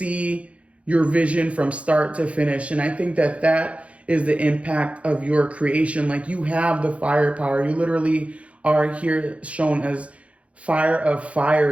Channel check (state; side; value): late; left; 0.063 ms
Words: your vision from start to finish. And I think that is the impact of your creation. Like, you have the firepower. You literally are here shown as fire of